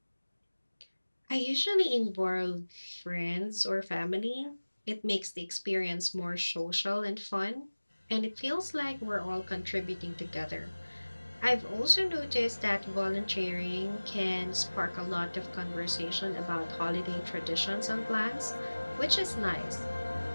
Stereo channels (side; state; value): both; inverted; correlation -1.00